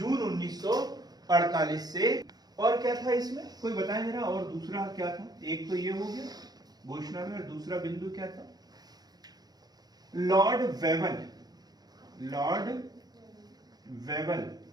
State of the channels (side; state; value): left; late; 0.19 ms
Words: 1948 से। और क्या था इसमें, कोई बताए जरा? और दूसरा क्या था? एक तो ये हो गया घोषणा में, और दूसरा बिंदु क्या था? लॉर्ड वेवल